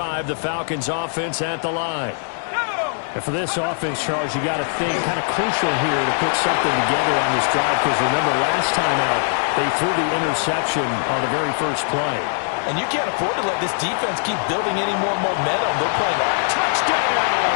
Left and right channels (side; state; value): right; silent; digital silence